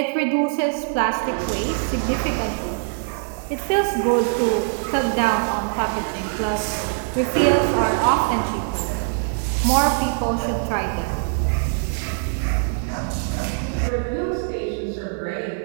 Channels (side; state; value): left; silent; digital silence